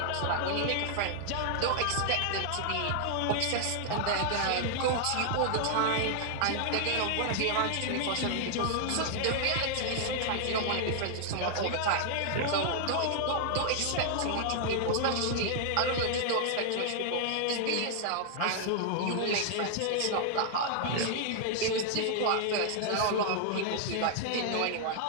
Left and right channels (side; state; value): both; different; correlation 0.00